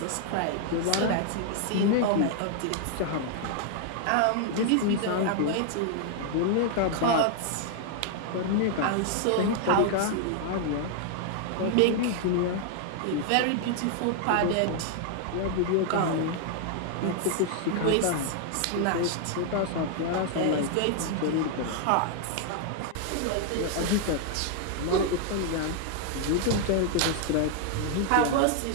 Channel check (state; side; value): different; both; correlation 0.00